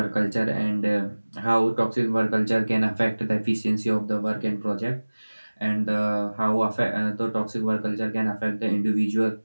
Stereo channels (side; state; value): both; inverted; correlation -1.00